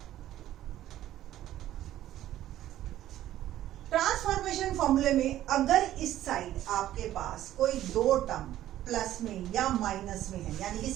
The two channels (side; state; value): left; quieter; 13.2 dB